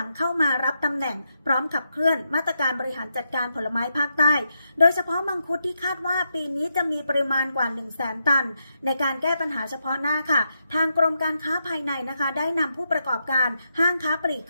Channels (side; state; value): both; inverted; correlation -0.83